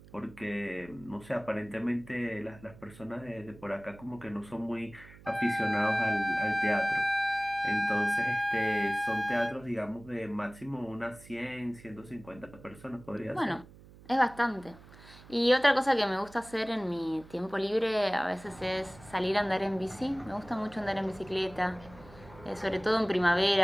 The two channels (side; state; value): right; noise; hum, 21 dB below the sound